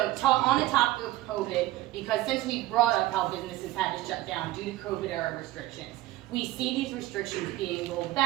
on the topic of COVID, because since we brought up how businesses had to shut down due to COVID era restrictions, we see these restrictions being rolled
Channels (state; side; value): quieter; left; 16.5 dB